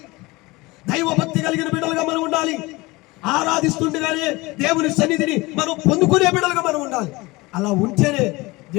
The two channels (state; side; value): quieter; right; 22.6 dB